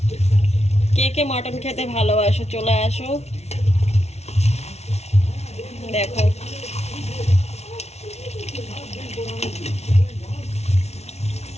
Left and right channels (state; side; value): late; right; 0.31 ms